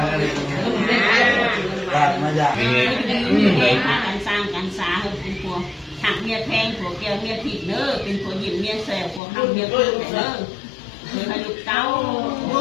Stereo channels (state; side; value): drops out; right; at 9.2 s